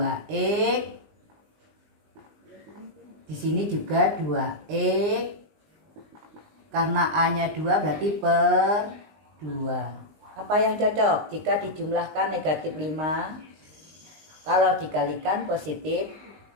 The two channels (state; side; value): late; left; 20 ms